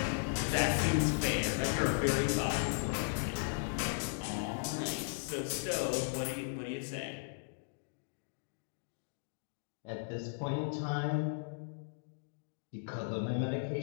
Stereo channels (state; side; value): silent; right; digital silence